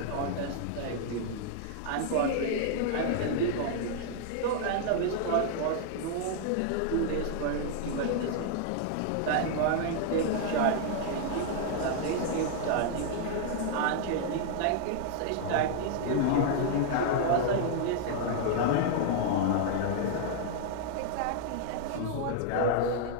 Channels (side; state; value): both; different; correlation -0.01